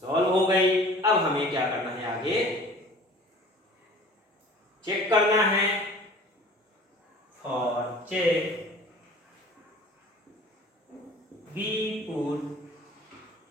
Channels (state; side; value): normal; both; correlation 0.46